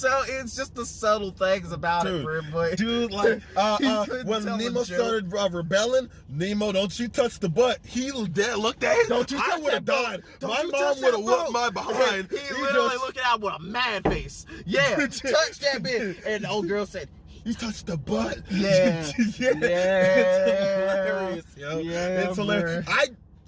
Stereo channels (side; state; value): both; identical; correlation 1.00